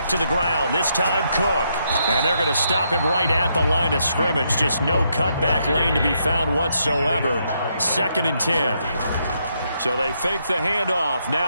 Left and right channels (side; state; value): both; inverted; correlation -0.77